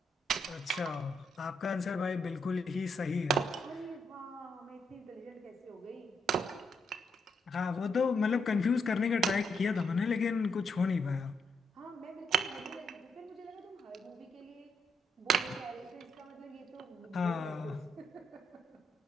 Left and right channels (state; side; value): normal; both; correlation 0.78